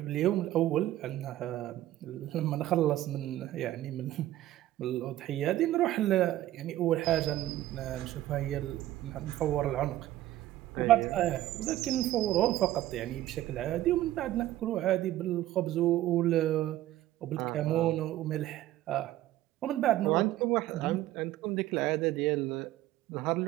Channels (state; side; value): quieter; left; 14.5 dB